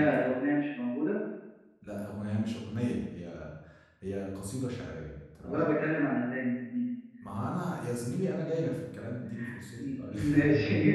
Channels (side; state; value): both; identical; correlation 1.00